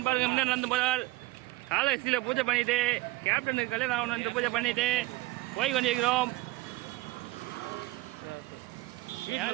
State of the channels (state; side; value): quieter; left; 19.5 dB